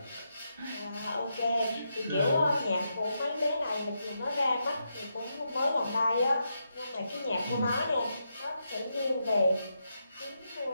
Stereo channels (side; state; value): both; inverted; correlation -0.83